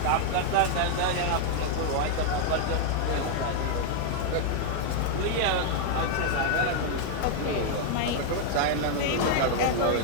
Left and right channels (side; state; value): both; different; correlation 0.00